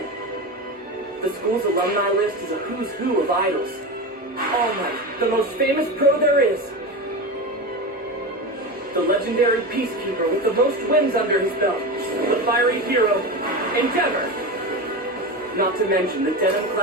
The school's alumni list is a who's who of idols. All Might, the most famous pro there is. The legendary peacekeeper with the most wins under his belt. The fiery hero, Endeavor. Not to mention the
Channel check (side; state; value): both; normal; correlation 0.22